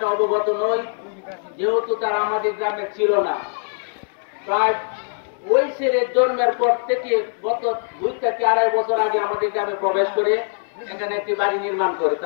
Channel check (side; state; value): right; silent; digital silence